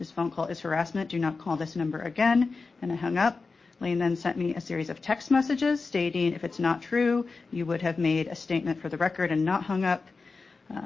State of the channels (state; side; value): quieter; right; 4.2 dB